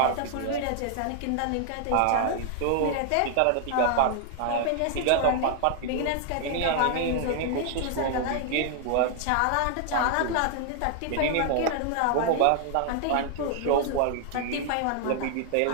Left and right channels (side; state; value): both; different; correlation 0.00